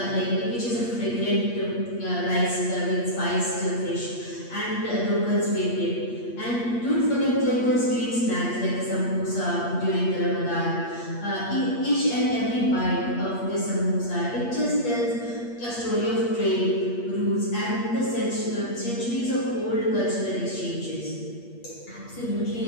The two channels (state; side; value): late; right; 8.5 ms